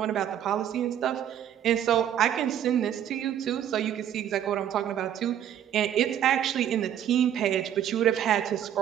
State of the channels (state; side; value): quieter; left; 10.3 dB